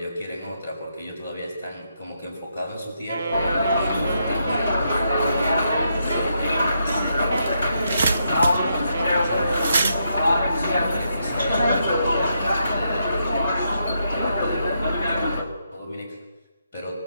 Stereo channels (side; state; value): both; inverted; correlation -0.79